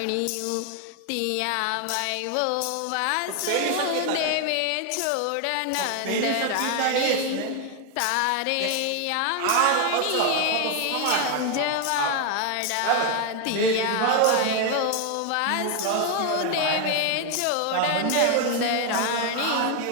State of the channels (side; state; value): both; different; correlation 0.01